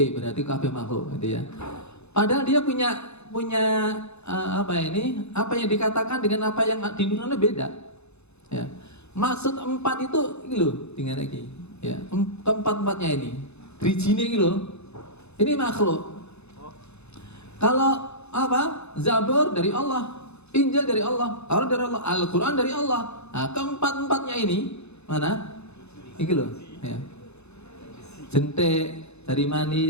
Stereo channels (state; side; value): late; right; 0.80 ms